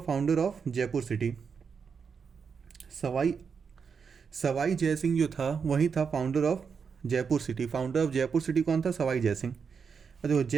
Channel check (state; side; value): quieter; left; 6.0 dB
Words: founder of Jaipur city. Sawai Sawai Jai Singh जो था वही था founder of Jaipur city. Founder of Jaipur city कौन था, सवाई जयसिंह। देखो